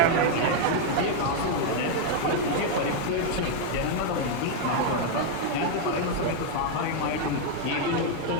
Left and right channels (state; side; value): different; both; correlation 0.00